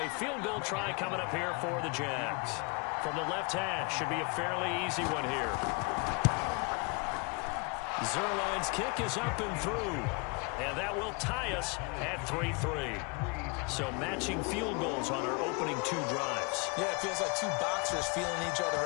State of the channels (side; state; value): right; quieter; 31.2 dB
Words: field goal try coming up here for the Jags. From the left hash, should be a fairly easy one here. Zerline's kick is up and through. And that will tie us at 3-3. So matching field goals on our opening 2 drives. Yeah, it feels like 2 boxers feeling each other